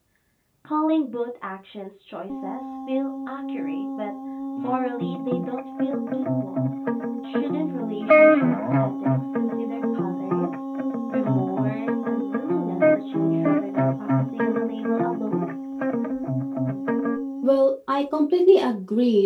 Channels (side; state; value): both; identical; correlation 1.00